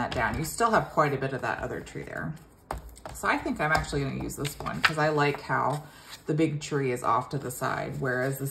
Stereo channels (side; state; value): both; identical; correlation 1.00